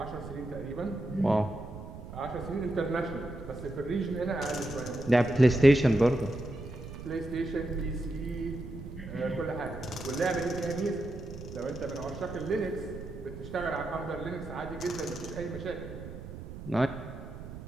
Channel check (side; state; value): right; noise; rumble, 11 dB below the sound